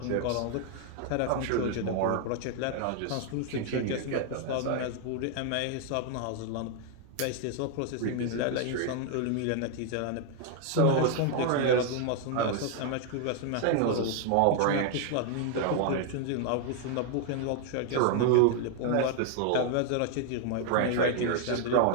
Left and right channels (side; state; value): both; different; correlation 0.00